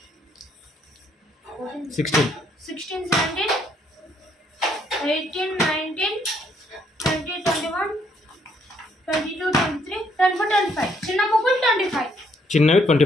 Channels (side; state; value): both; normal; correlation 0.69